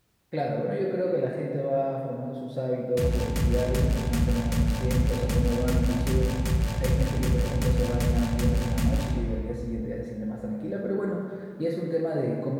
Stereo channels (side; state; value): both; identical; correlation 1.00